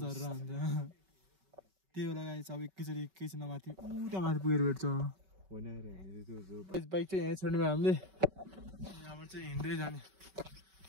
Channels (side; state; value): left; late; 5.3 ms